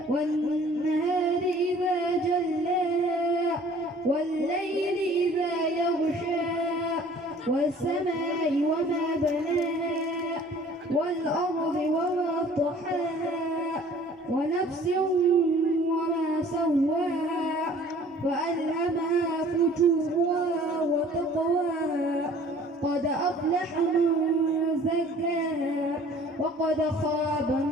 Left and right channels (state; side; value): normal; both; correlation 0.52